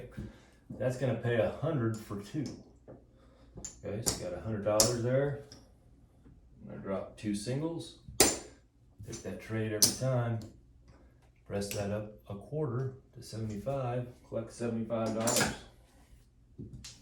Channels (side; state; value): both; identical; correlation 1.00